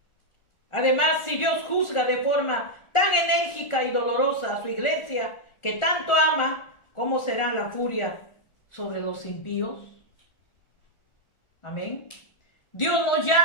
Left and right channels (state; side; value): late; right; 1.4 ms